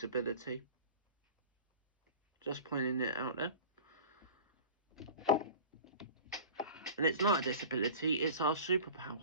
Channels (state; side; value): inverted; both; correlation -0.38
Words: Just pointing it out there. And it's not a disability, it's our